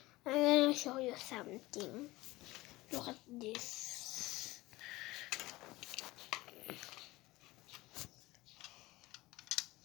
I'm gonna show you something. Look at this.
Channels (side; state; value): right; quieter; 19.7 dB